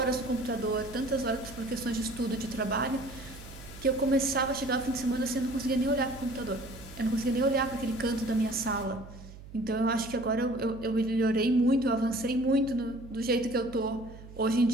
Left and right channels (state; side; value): noise; right; hum, 16 dB below the sound